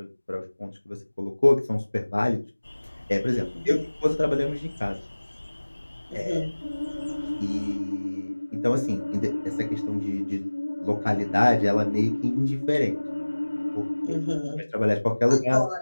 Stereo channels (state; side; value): inverted; both; correlation -1.00